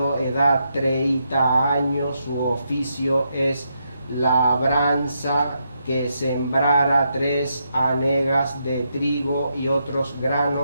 edad 30 años, su oficio es labranza, que sembrara 3 hanegas de trigo y otros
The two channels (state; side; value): inverted; both; correlation -0.81